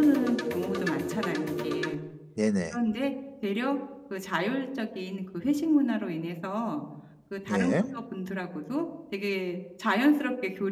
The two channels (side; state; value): both; identical; correlation 1.00